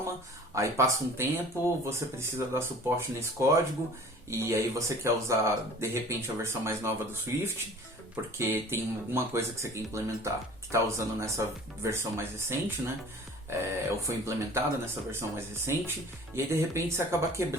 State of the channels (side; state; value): both; normal; correlation 0.46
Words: aí passa um tempo, você precisa dar suporte nesse código, e aí você quer usar, de repente, a versão mais nova do Swift, porque tem alguma coisa que você quer implementar que está usando nessa versão mais recente, né? Ou foi implementada nessa versão mais recente, e aí de repente você acaba